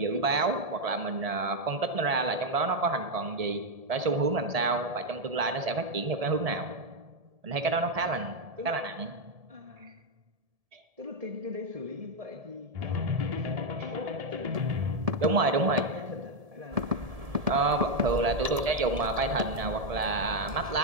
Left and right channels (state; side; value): late; left; 1.7 ms